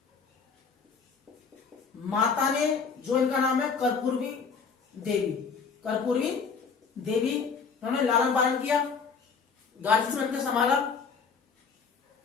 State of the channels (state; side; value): quieter; right; 5.6 dB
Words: माता ने, जो इनका नाम है कर्पूरी देवी, कर्पूरी देवी, उन्होंने लालन पालन किया, गार्जियन बन के संभाला।